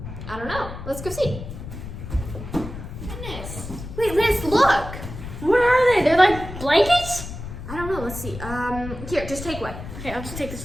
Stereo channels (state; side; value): noise; left; rumble, 10 dB below the sound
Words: don't know. Let's go see. Goodness. Wait, Lance, look. What are they? They're like blankets? I don't know. Let's see. Here, just take one. Okay, I'll just take